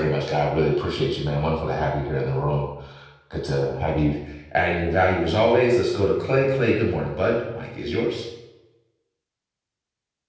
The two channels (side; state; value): both; identical; correlation 1.00